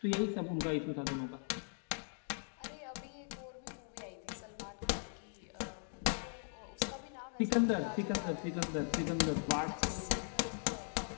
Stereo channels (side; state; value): right; silent; 51 dB below the other